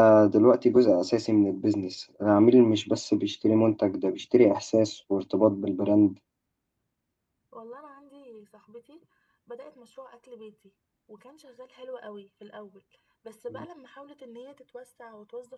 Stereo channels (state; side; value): identical; both; correlation 1.00